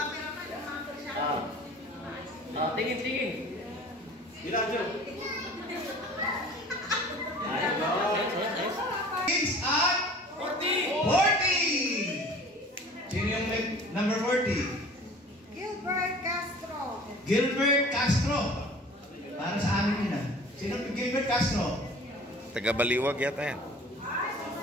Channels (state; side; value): normal; both; correlation 0.45